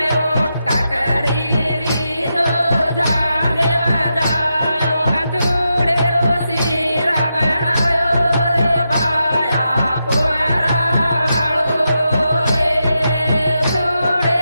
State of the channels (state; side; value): inverted; both; correlation -0.86